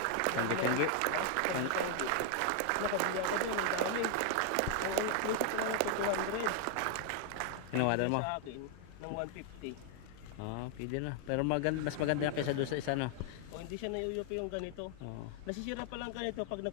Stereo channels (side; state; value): both; different; correlation 0.00